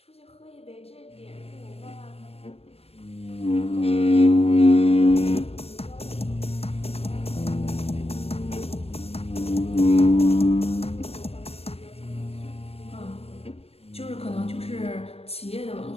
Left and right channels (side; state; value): right; late; 0.29 ms